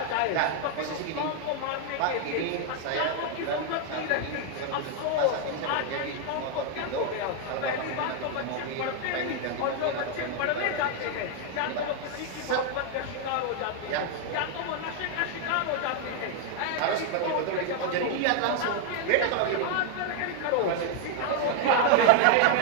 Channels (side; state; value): both; different; correlation 0.00